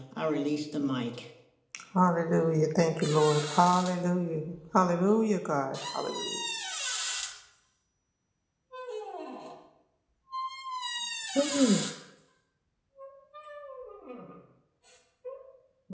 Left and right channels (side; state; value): both; identical; correlation 1.00